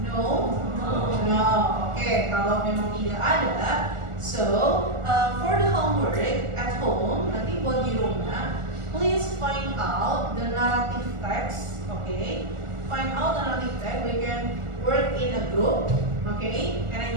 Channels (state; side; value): late; left; 1.4 ms